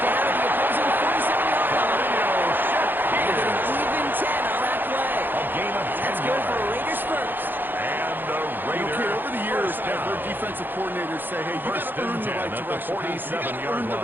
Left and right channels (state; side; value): late; left; 0.093 ms